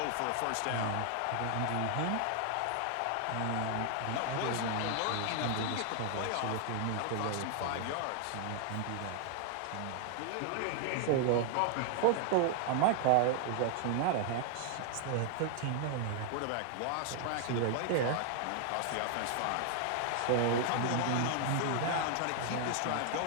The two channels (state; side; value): different; both; correlation 0.00